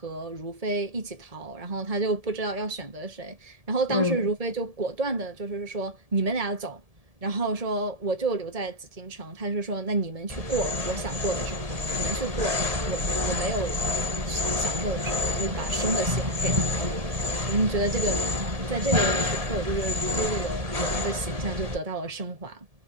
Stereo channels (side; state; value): left; late; 1.7 ms